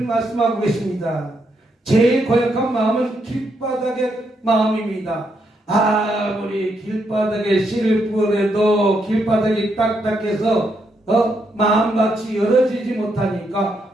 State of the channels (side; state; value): both; normal; correlation 0.78